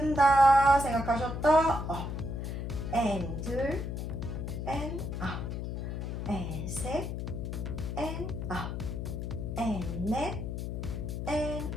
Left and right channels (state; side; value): noise; left; hum, 4 dB below the sound